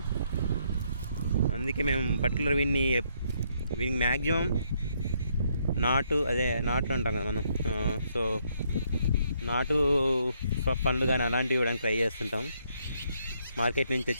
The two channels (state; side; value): inverted; both; correlation -0.72